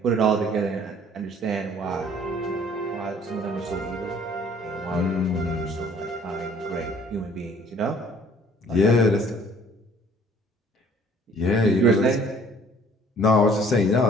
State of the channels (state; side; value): normal; both; correlation 0.56